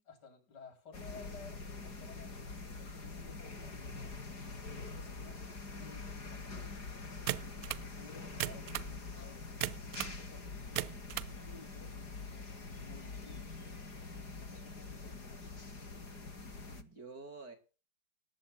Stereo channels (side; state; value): right; late; 4.2 ms